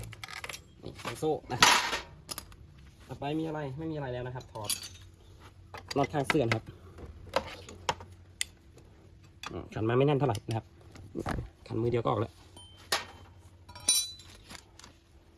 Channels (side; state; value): both; identical; correlation 1.00